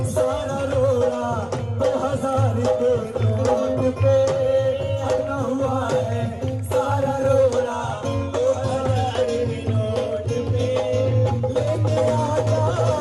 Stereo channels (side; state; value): left; noise; rumble, 29 dB below the sound